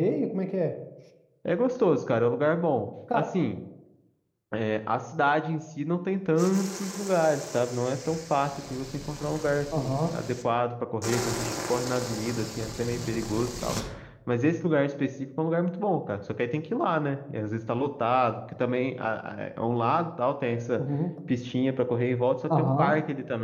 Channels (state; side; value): identical; both; correlation 1.00